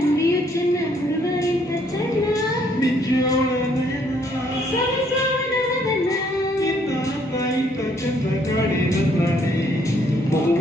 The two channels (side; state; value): both; normal; correlation 0.67